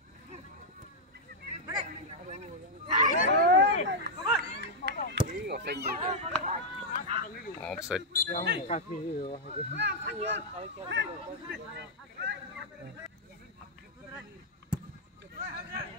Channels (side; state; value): both; normal; correlation -0.05